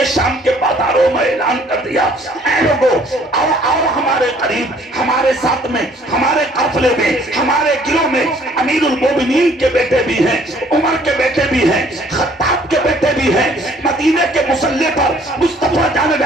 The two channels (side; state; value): both; normal; correlation 0.59